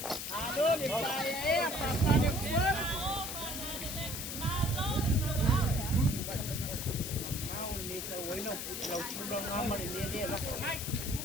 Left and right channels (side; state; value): left; noise; hiss, 5 dB below the sound